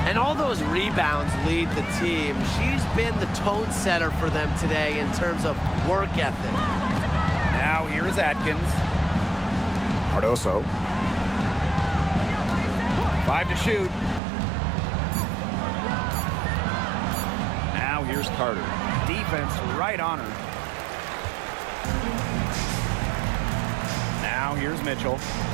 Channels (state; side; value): drops out; left; at 14.2 s